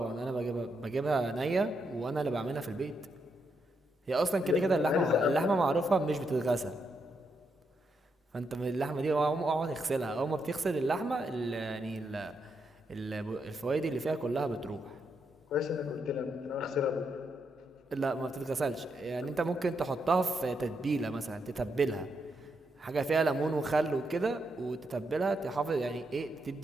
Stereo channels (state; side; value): normal; both; correlation 0.81